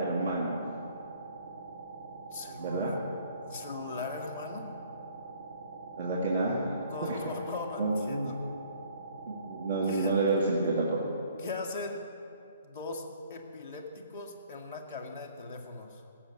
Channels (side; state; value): both; inverted; correlation -0.58